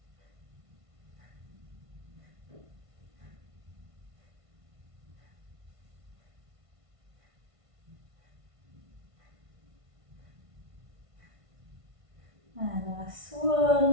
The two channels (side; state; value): left; late; 1.5 ms